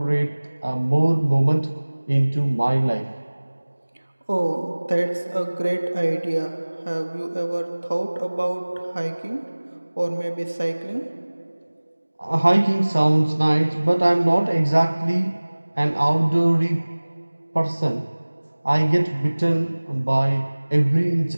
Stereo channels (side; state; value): both; inverted; correlation -1.00